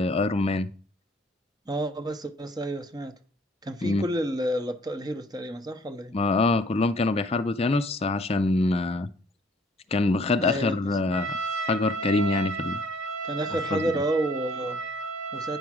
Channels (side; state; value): both; normal; correlation 0.59